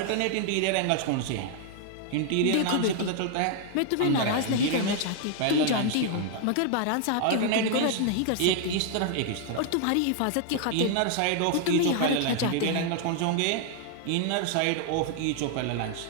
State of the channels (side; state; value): both; different; correlation 0.00